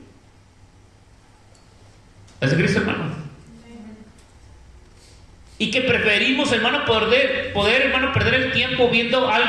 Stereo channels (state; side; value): identical; both; correlation 1.00